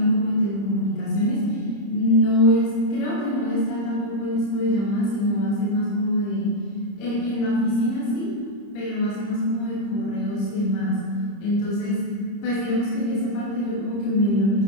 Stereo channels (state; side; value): late; right; 30 ms